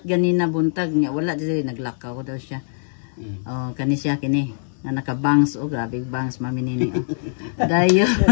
ganina buntag niya, wala di naglakaw daw siya. Oh, kani siya kini. Nga naka-bangs, oh grabe bangs mami nini. Oh. Dayon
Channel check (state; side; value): silent; right; 64 dB below the other